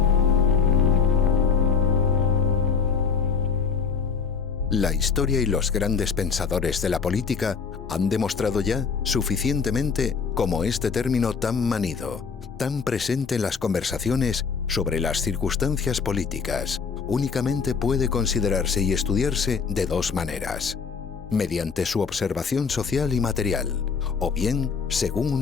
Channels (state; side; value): quieter; right; 5.7 dB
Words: La historia y los grandes pensadores de la política han demostrado ya suficientemente cómo este término tan manido, tan presente en las conversaciones sobre las circunstancias políticas, únicamente puede considerarse y estudiarse de dos maneras: mediante su observación social y material, o bien según